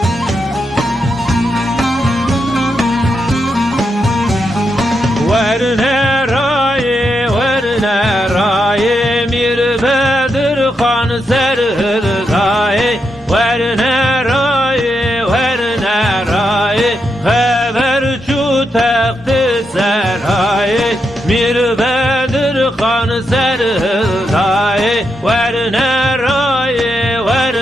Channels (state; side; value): normal; both; correlation 0.84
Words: ورنه رای میر بدر خان سرهدای ورنه رای خبر چو تخت سرای میر بدر خان سرهدای ورنه رای